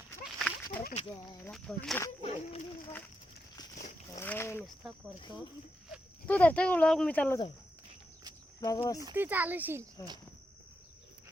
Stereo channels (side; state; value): both; normal; correlation 0.84